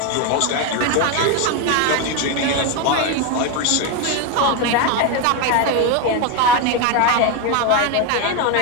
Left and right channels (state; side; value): different; both; correlation 0.02